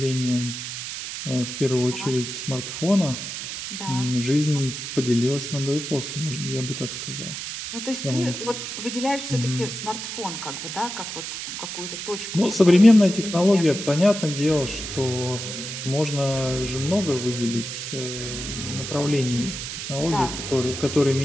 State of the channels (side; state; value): right; noise; hiss, 7 dB below the sound